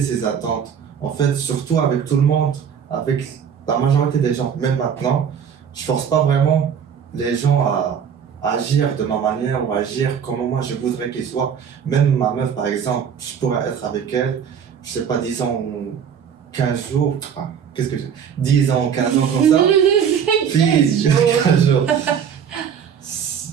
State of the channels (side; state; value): left; quieter; 7.7 dB